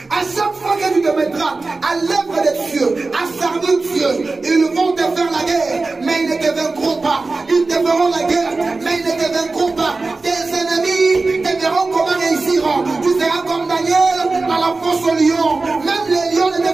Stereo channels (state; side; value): quieter; left; 3.6 dB